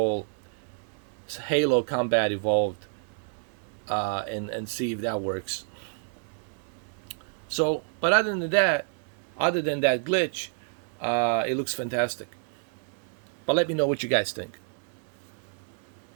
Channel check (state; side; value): silent; left; 56 dB below the other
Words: Halo Combat Evolved and see if that works. So, but other than that glitch, it looks fantastic. But let me know what you guys think.